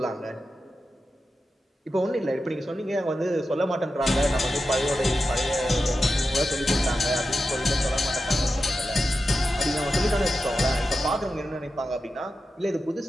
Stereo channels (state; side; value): normal; both; correlation 0.90